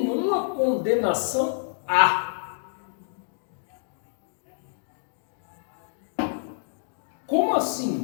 condenação há. Como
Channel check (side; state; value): right; silent; digital silence